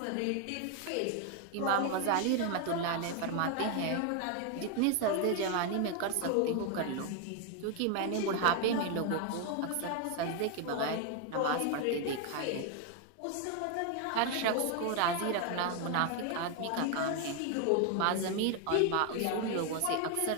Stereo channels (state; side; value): different; both; correlation 0.01